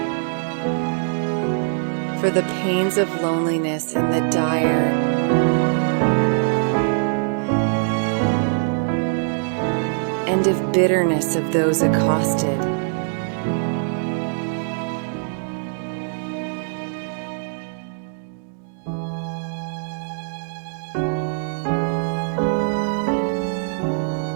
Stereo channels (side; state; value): left; silent; 64 dB below the other